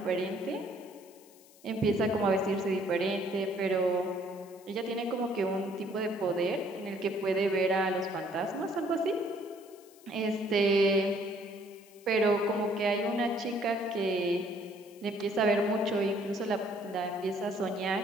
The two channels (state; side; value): noise; left; hiss, 25 dB below the sound